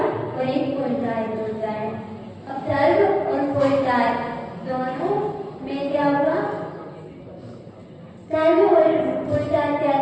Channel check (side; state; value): both; identical; correlation 1.00